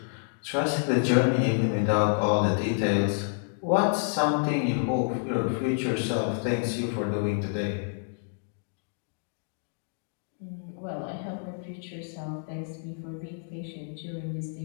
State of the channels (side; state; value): right; silent; digital silence